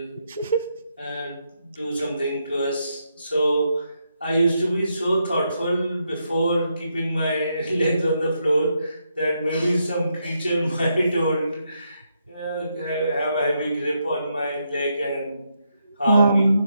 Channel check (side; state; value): both; inverted; correlation -0.80